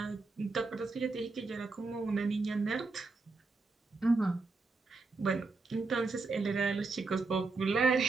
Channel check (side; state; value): left; quieter; 3.9 dB